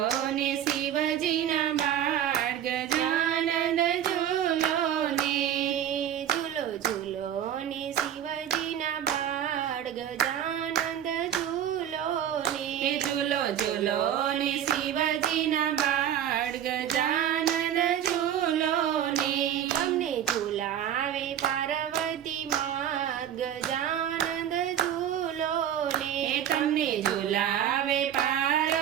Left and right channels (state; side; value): quieter; left; 10.1 dB